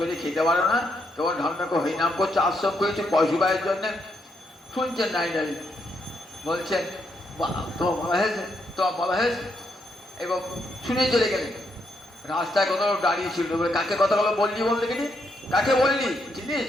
খেতে পারো না, কেবল ঢন্ডাকে হরিনাম করছে, আশ্রম করেছে পশুবাইয়ের জন্যে, শুনছেন নাই নাই বলছেন তোমার বলা হয়েছে এবং শুনে চলে গেলেন। রাস্তায় কত দাঁড়িয়ে ছিল, কাকে কথাগুলো বললি বলতে গেলি, কাকে বললি চিনিস?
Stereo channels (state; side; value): normal; both; correlation 0.78